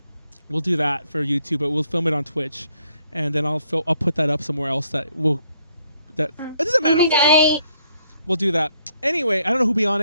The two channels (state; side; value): inverted; both; correlation -0.70